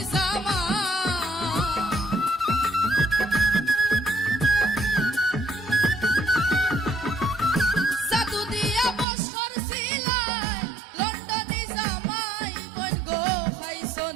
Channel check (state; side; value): drops out; left; at 9.1 s